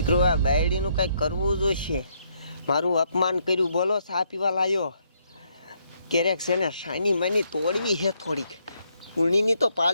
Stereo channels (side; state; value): both; inverted; correlation -0.73